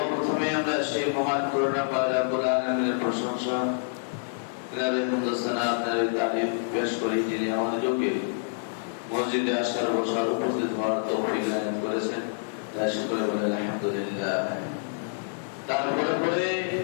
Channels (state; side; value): silent; right; digital silence